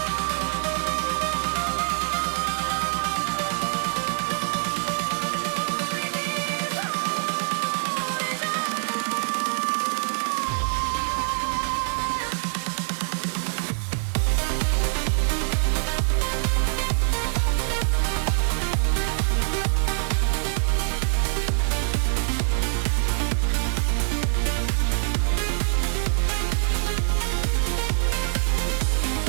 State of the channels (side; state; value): left; silent; digital silence